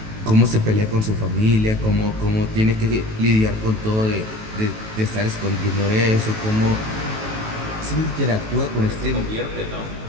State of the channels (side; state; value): left; late; 18 ms